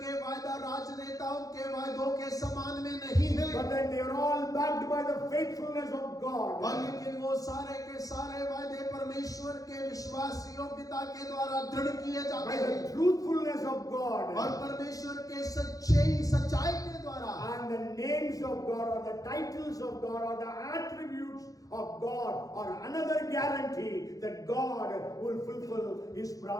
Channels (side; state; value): right; late; 0.17 ms